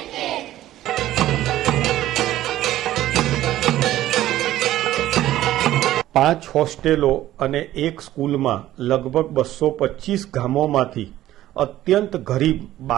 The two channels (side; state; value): left; quieter; 14.1 dB